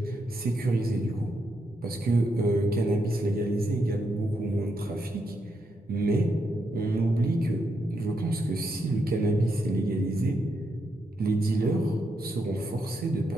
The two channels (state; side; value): normal; both; correlation 0.81